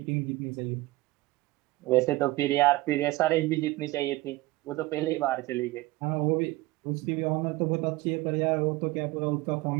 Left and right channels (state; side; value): quieter; left; 19.5 dB